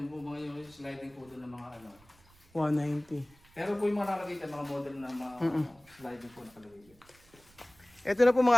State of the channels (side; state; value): right; noise; rumble, 28 dB below the sound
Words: po mga yung sliding po doon ng mga ano. 190. Pero po yung mga nakalagay dyan, mga model na mga sliding po nakalagay dyan. Ito na po